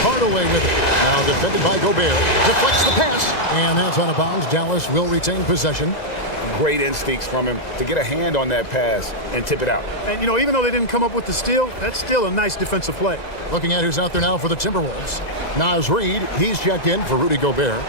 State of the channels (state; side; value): late; right; 2.0 ms